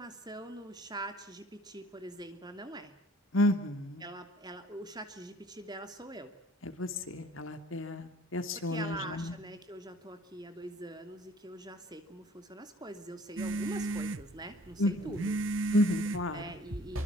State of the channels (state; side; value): normal; both; correlation 0.53